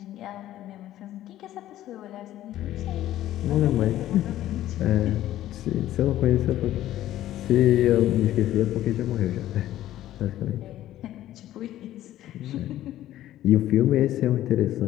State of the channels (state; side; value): quieter; right; 13.5 dB